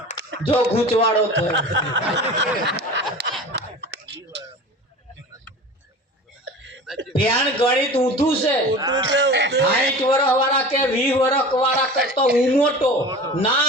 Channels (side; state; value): both; normal; correlation 0.36